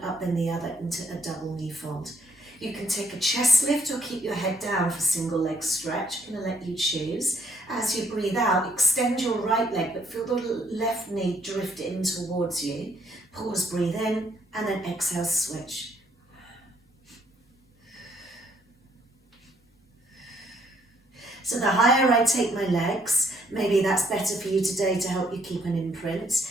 up then the other into a double knee fold. You can take a chest lift or keep your head down for single leg stretch. I'm going to let you choose. As you breathe out, extend your right leg, but feel the left knee drift in towards you. Pause, breathe in, and then exhale, switch. So the higher I take my legs, maybe that's better for you today to help you keep an imprint.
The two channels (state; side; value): normal; both; correlation 0.70